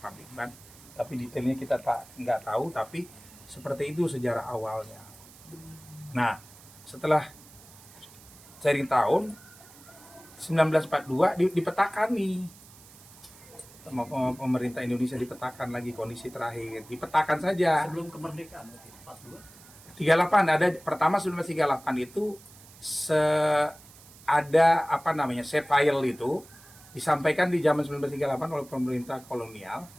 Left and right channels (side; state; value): right; noise; hiss, 22 dB below the sound